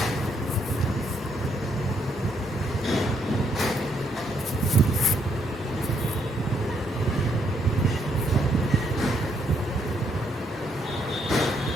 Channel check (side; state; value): both; normal; correlation 0.73